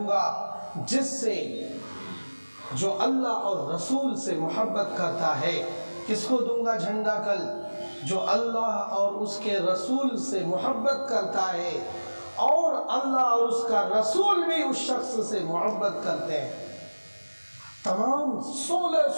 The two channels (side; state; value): both; inverted; correlation -1.00